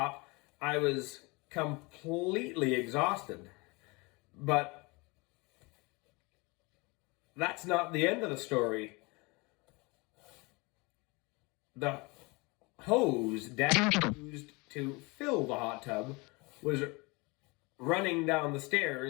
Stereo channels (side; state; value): right; quieter; 26.6 dB